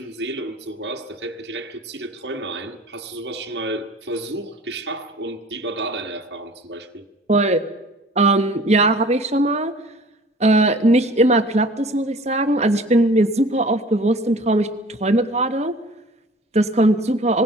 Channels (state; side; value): normal; both; correlation 0.46